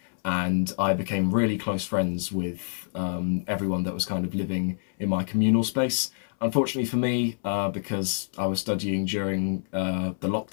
and I became really close friends with everyone that was kind of living in my communal space. Unfortunately for me, because I was studying during the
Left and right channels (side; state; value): right; silent; 60 dB below the other